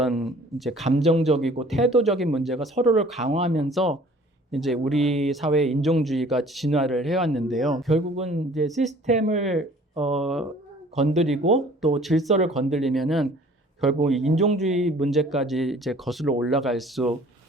이제 감정적이고 태도적인 문제가 서로를 강화하면서 이제 우리 사회의 인종주의가 진화를 해왔는데요. 결국은 이제 시스템을 건드리고 또 질서를 건드리면은 결국 인종주의 문제까지 이제 거슬러 올라갈 수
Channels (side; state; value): both; normal; correlation 0.52